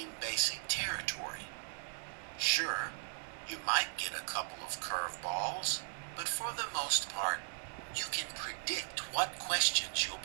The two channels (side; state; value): left; silent; digital silence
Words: basic territory. Sure, you might get a couple of curveballs, but for the most part, you can predict what questions